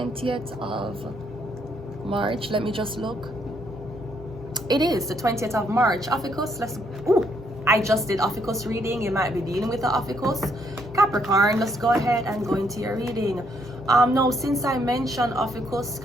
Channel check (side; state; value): left; noise; hum, 25 dB below the sound